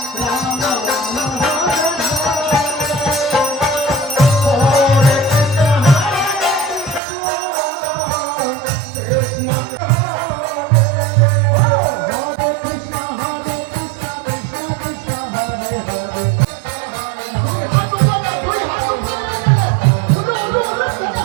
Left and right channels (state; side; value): drops out; left; at 7.0 s